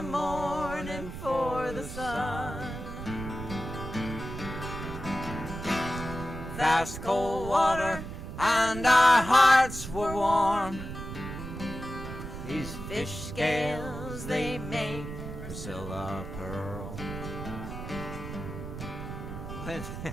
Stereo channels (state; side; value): noise; right; rumble, 8 dB below the sound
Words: morning for the sun. Fast cold water and our hearts were warm. These fish scales, they make Priscilla pearl.